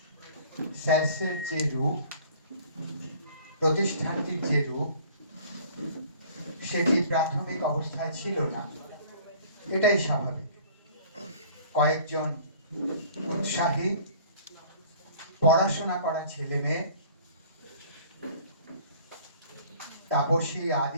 স্যার্সের যে রূপ, প্রতিষ্ঠানটির যে রূপ, সেটি প্রাথমিক অবস্থায় ছিল না, এটাই স্বাভাবিক। কয়েকজন উৎসাহী পড়াশোনা করা ছেলে মেয়ে, তাপসী,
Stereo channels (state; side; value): inverted; both; correlation -0.51